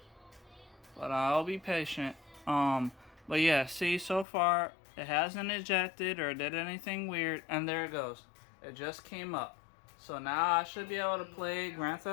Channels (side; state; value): right; drops out; at 4.2 s